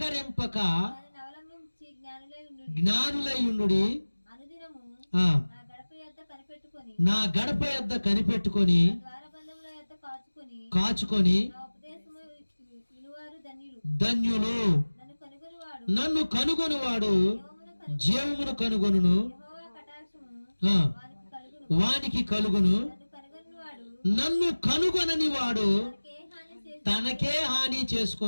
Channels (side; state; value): both; inverted; correlation -1.00